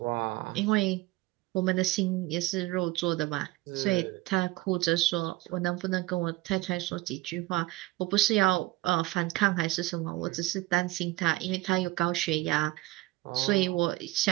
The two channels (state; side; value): quieter; left; 18.9 dB